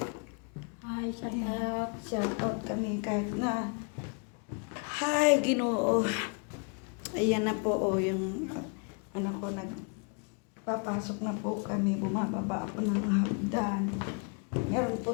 Hi, shout out. Shout out kami kahit na. Hi, Ginoo. Ayan na po, yung anak ko nagpapasok na po kami. Bumababa ako ng hagdan. Meron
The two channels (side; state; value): right; quieter; 37.0 dB